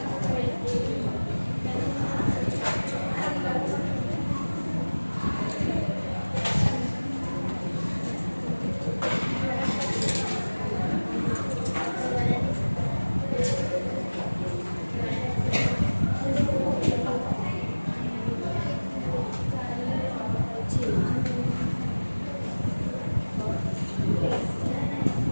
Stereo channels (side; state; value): both; inverted; correlation -1.00